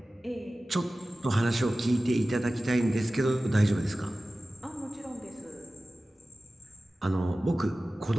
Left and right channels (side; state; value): both; normal; correlation 0.96